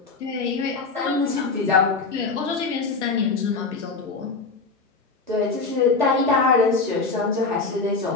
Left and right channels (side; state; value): right; quieter; 4.2 dB